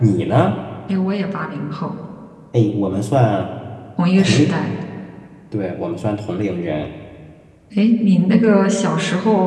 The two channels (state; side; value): identical; both; correlation 1.00